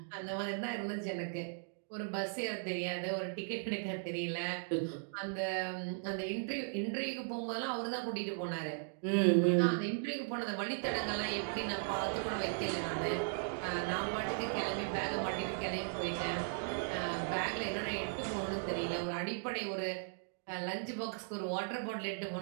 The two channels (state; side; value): silent; left; digital silence